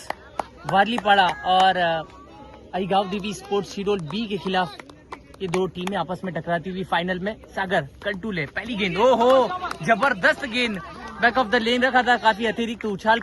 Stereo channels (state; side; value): identical; both; correlation 1.00